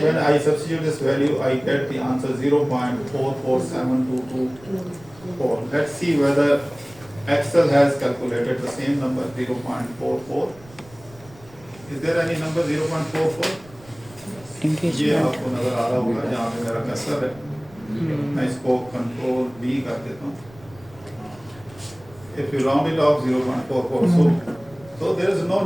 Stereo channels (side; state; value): right; noise; rumble, 23 dB below the sound